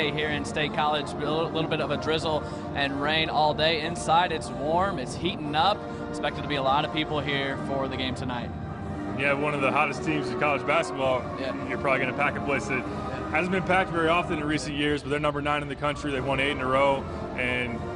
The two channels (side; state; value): both; identical; correlation 1.00